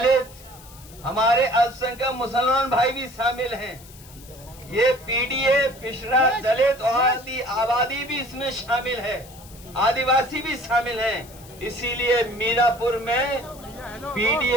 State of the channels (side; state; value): left; noise; hiss, 21 dB below the sound